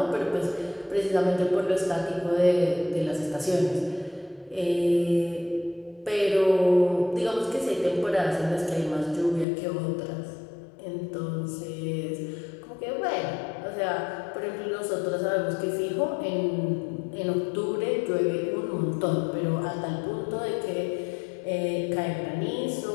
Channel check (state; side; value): drops out; right; at 9.5 s